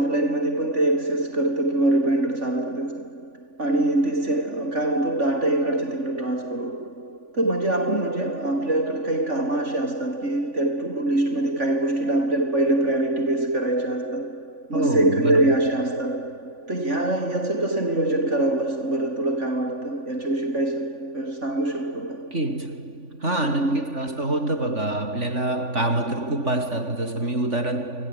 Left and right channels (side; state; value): left; late; 3.5 ms